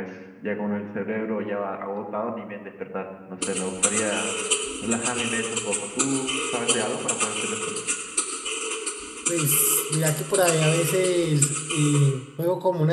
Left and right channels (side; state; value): both; identical; correlation 1.00